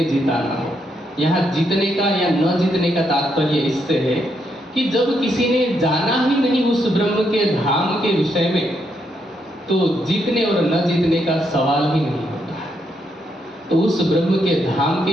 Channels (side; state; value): both; normal; correlation 0.78